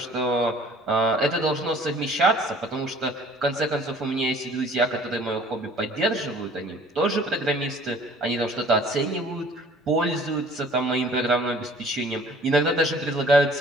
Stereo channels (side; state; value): both; normal; correlation 0.52